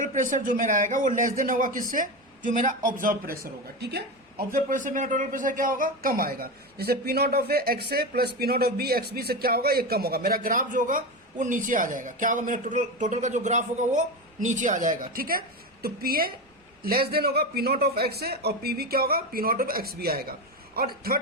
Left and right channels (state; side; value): normal; both; correlation 0.18